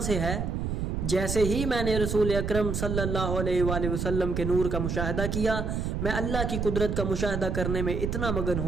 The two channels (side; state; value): right; noise; rumble, 1 dB below the sound